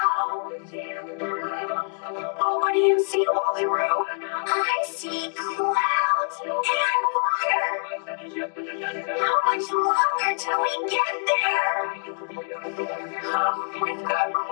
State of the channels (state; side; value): silent; right; 56 dB below the other